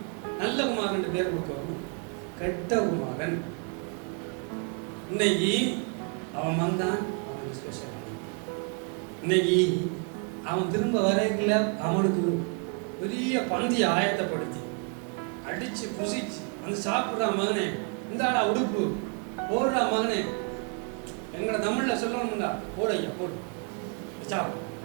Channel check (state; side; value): quieter; left; 38.0 dB